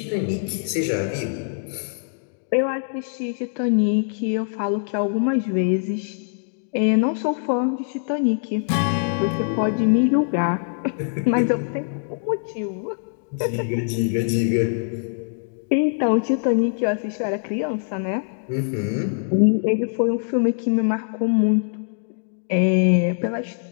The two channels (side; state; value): right; silent; digital silence